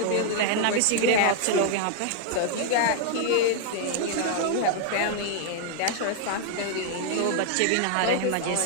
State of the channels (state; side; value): different; both; correlation 0.00